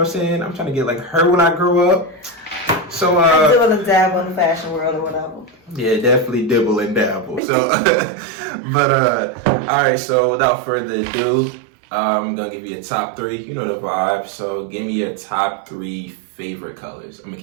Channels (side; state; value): left; drops out; at 7.4 s